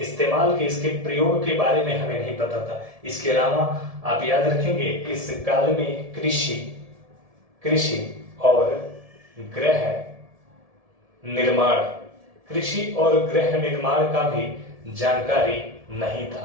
के, इसके प्रयोग के बारे में हमें नहीं पता था। इसके अलावा आप याद रखेंगे इस काल में कृषि और गृह निर्माण कृषि और गृह निर्माण का भी जानकारी नहीं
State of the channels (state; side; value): late; left; 1.7 ms